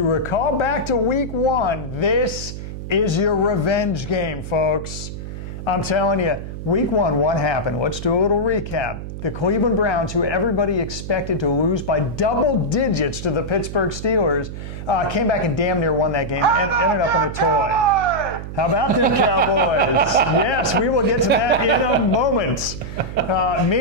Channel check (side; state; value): right; noise; hum, 9 dB below the sound